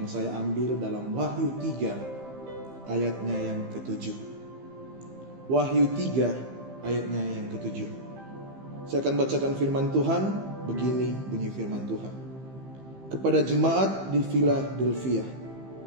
saya ambil dalam Wahyu 3 ayatnya yang ke-7. Wahyu 3 ayatnya yang ke-7. Saya akan bacakan firman Tuhan. Begini bunyi firman Tuhan. Kepada jemaat di Philadelphia,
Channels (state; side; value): late; left; 15 ms